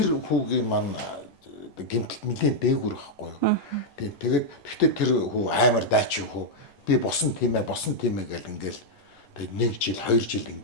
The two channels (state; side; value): late; right; 11 ms